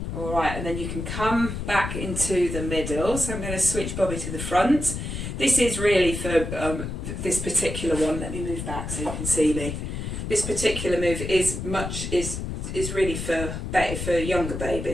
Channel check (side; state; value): left; noise; rumble, 5 dB below the sound